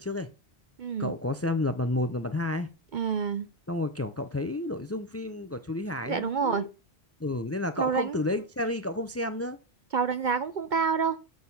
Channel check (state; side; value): normal; both; correlation 0.09